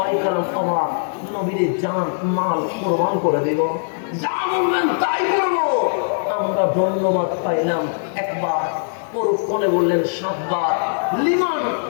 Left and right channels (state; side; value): silent; right; 65 dB below the other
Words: কেরাম অবাক, নবীর জান মাল কোরবান করে দেব, যা বলবেন তাই করবো। আমরা ধন্যবাদ পাইলাম একবার, পরক্ষণে বললেন 7 বার। লিমান